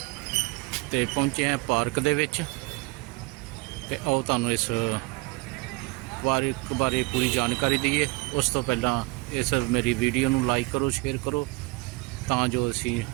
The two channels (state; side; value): quieter; left; 24.9 dB